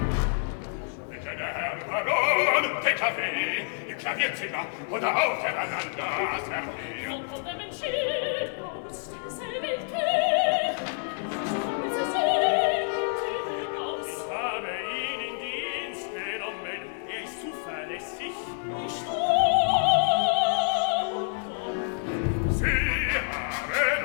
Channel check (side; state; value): right; silent; 59 dB below the other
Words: Bitte, der Herr Baron, den Kaffee im Klavierzimmer oder auf der Veranda, Servier. Wo kommt der Mensch hin? Aus derselben Tür. Kommen Sie sehen, hinaus. Ich habe ihn in Dienst genommen. Er ist zuverlässig. Ich komm. Sie haben